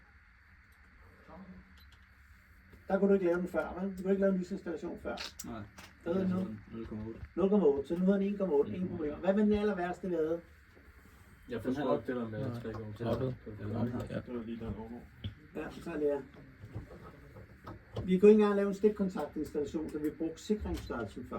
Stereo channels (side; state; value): both; identical; correlation 1.00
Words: Der kunne du ikke lave den før, vel? Du kunne ikke lave en lysinstallation før. Nej. Der hedder nu 0,8. 0,8, så nu hedder den 1,8, ingen problemer. Hvad var den aller værste, vi havde? Jeg forstår godt det der med 3,13. Ja. det var lige der logo. Ja, så er det her. Vi kunne ikke engang lave en stikkontaktinstallation, så vi brugte sikringsstørrelsen